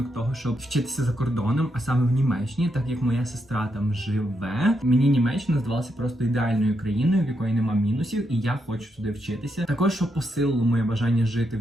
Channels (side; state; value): both; normal; correlation 0.81